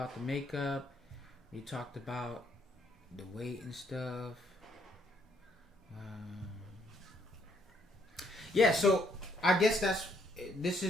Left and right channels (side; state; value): both; normal; correlation 0.70